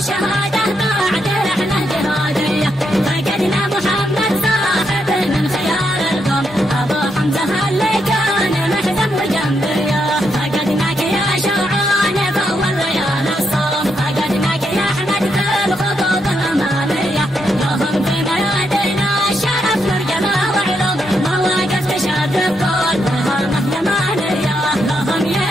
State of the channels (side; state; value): both; normal; correlation 0.80